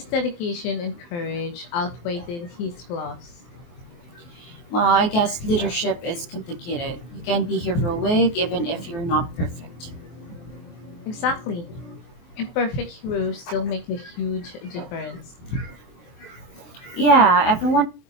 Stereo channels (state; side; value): late; right; 23 ms